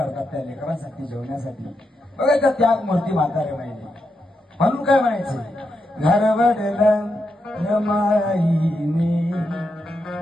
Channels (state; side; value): normal; both; correlation 0.85